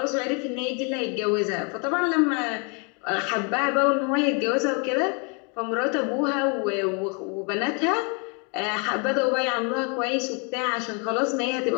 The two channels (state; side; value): quieter; right; 35.3 dB